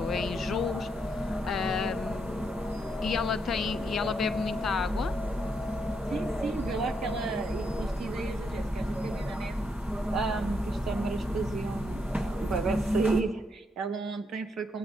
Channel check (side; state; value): both; normal; correlation 0.77